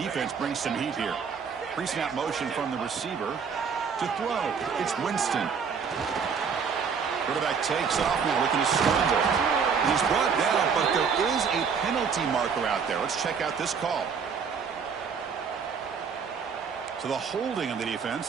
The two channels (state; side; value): quieter; left; 6.2 dB